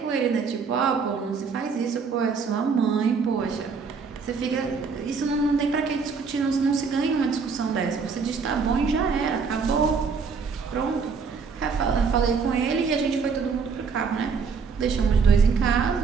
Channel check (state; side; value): quieter; left; 5.4 dB